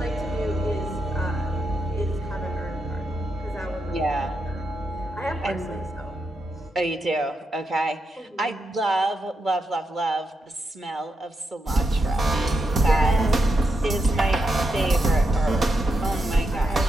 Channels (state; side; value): normal; both; correlation 0.84